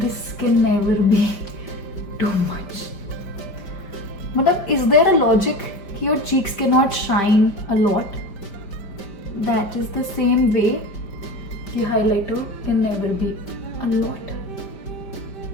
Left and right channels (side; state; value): right; late; 4.9 ms